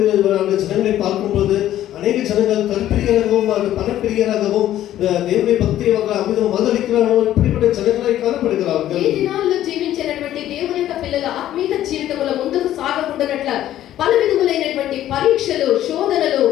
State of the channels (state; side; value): quieter; right; 12.7 dB